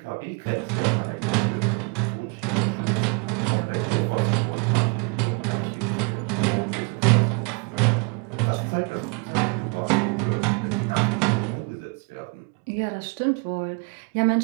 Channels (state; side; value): quieter; left; 33.6 dB